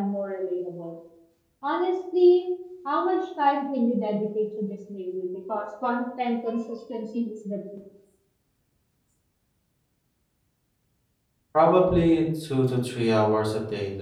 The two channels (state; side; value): identical; both; correlation 1.00